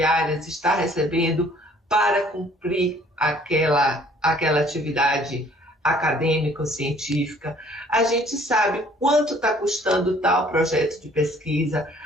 está recebendo para cumprir aquela atividade acadêmica ou científica. A gente sabe quanto está custando tal projeto de pesquisa,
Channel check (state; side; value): normal; both; correlation 0.57